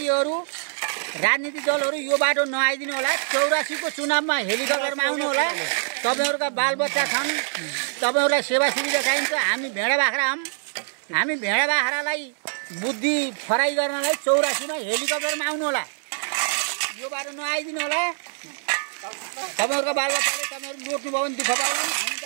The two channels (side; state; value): left; silent; digital silence